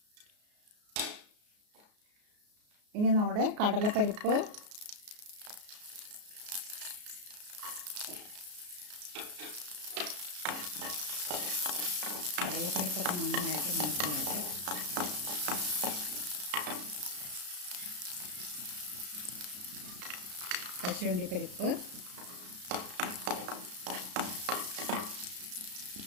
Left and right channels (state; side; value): late; left; 33 ms